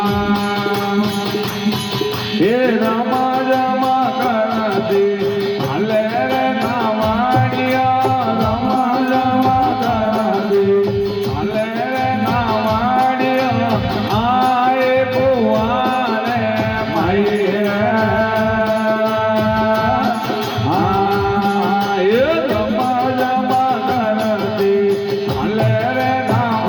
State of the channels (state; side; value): identical; both; correlation 1.00